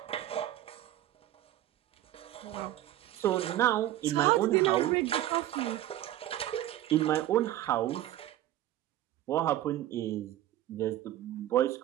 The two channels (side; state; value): left; quieter; 13.7 dB